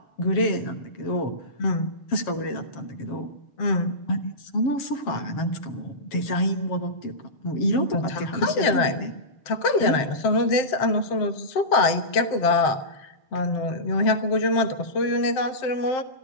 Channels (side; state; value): right; late; 7.7 ms